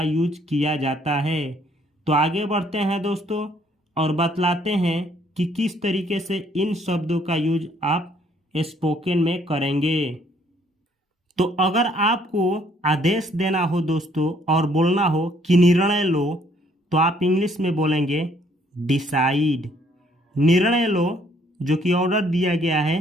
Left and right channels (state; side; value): normal; both; correlation 0.64